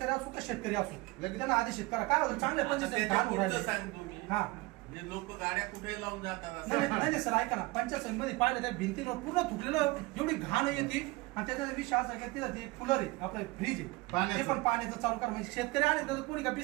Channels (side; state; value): left; quieter; 22.7 dB